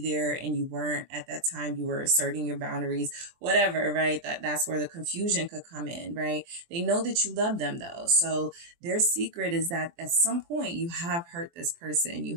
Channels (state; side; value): late; left; 23 ms